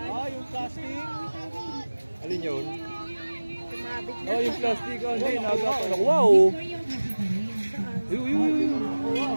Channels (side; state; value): both; inverted; correlation -1.00